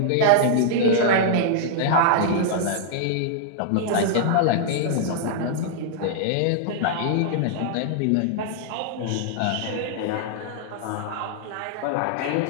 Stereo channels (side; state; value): both; different; correlation -0.01